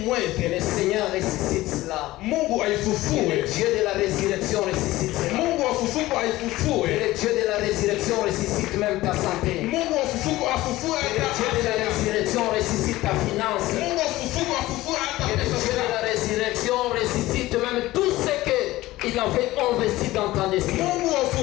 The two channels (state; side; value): quieter; right; 17.4 dB